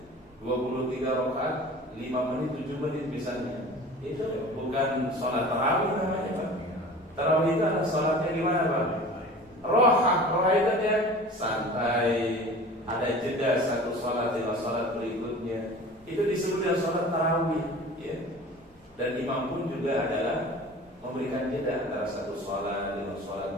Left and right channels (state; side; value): normal; both; correlation 0.40